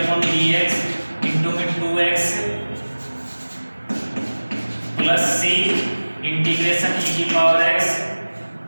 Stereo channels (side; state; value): both; inverted; correlation -1.00